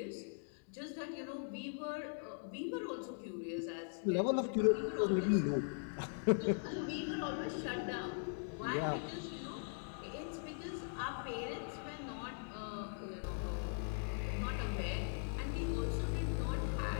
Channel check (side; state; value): right; silent; digital silence